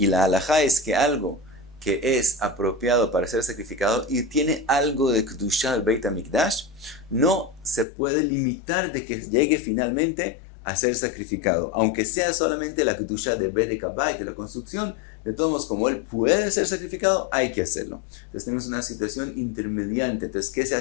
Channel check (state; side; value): drops out; right; at 7.9 s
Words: la halajá es que algo que es apropiado para ser sacrificado y tiene algo de Kedushá al Beit HaMikdash, no se puede limitar de que llegue finalmente a ser sacrificado. Aunque sea solamente la Kedushá de Bedek Habayit, de la construcción, de todos modos, como él puede ser sacrificado, hay que hacerlo. Entonces tenemos una situación intermediante. Entonces, ¿qué se